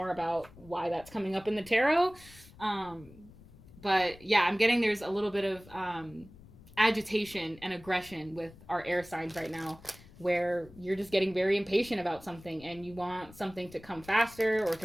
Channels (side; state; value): left; noise; rumble, 21 dB below the sound